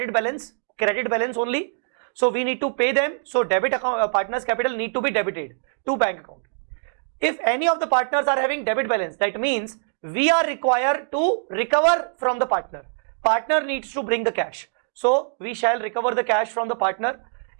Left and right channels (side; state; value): left; silent; digital silence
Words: balance only. So we need to pay them. So debit account, partners capital need to be debited to bank account. If any of the partners are having debit balance, that means we are required to recover from the partner. Partner needs to bring the cash. So we shall recover the cash from the partner.